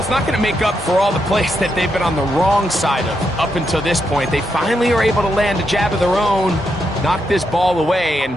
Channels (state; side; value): normal; both; correlation 0.82